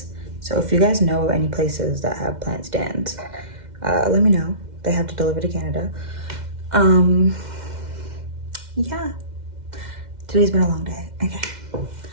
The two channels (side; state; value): left; late; 2.1 ms